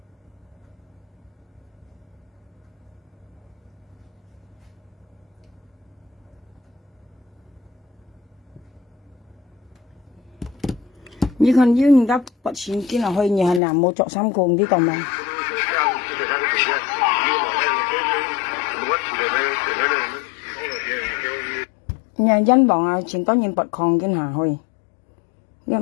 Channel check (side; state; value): right; drops out; at 13.6 s